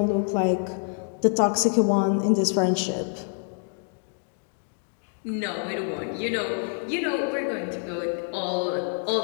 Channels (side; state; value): right; silent; 57 dB below the other